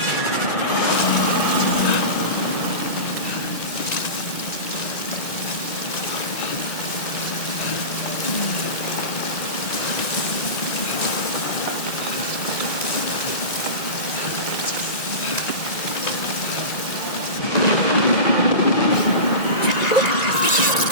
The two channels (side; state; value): right; late; 1.9 ms